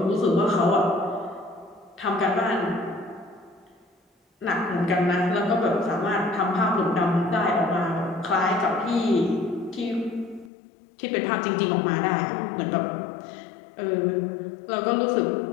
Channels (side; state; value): right; drops out; at 10.5 s